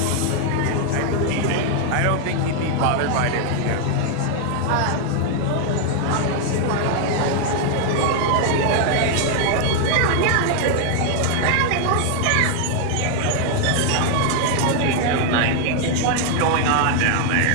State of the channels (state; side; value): different; both; correlation 0.00